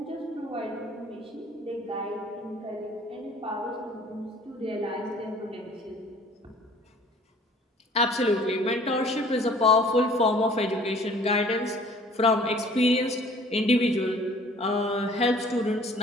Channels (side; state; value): both; normal; correlation 0.52